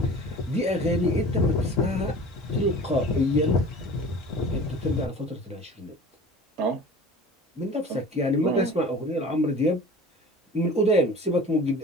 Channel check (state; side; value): normal; both; correlation 0.41